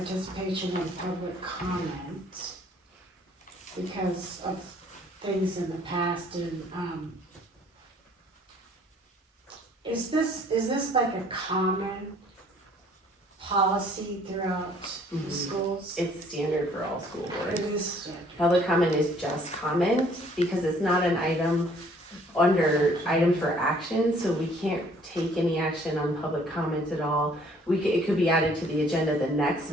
and public comment because of things in the past and is this like a common policy throughout the schools? It's standard for all school boards. It is standard. Public comment is just comment because it's not an item under item for action, so we can't take any action on public comment at all. It could be added to the agenda the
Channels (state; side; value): normal; both; correlation 0.59